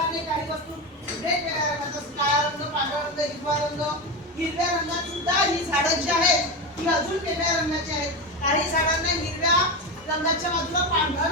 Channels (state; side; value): normal; both; correlation 0.18